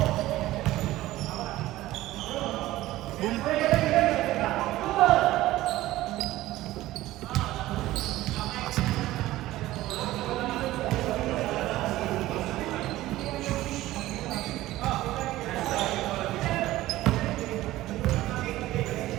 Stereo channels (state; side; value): quieter; left; 16.3 dB